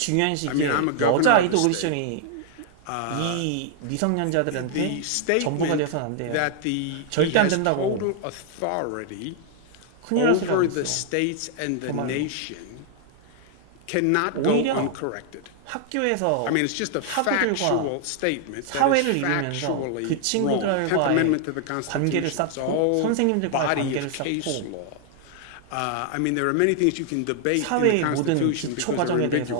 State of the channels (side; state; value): both; different; correlation 0.00